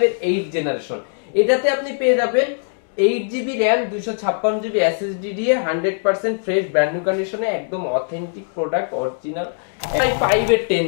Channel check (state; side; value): silent; right; digital silence